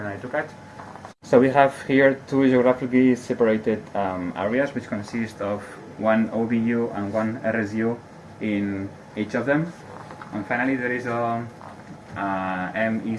i2CAD. So we have here two geographically separated areas which consist of one OBU and one RSU in each of them. And finally there is a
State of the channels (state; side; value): identical; both; correlation 1.00